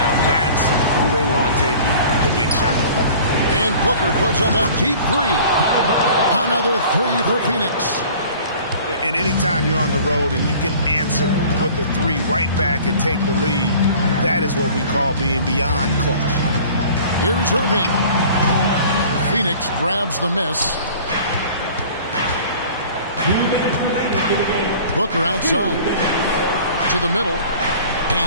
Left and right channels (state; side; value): inverted; both; correlation -0.46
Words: That's who they want taking the big shot. And Booker puts up a deep three. Another three for Phoenix. And anytime you're on the road and you can answer with the three right back and take the lead, that is what we call being beyond clutch. Here's Irving. Phoenix grabs the miss. Booker outside. To the middle.